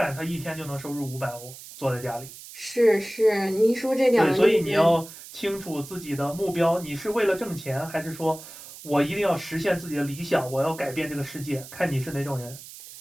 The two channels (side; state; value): right; noise; hiss, 16 dB below the sound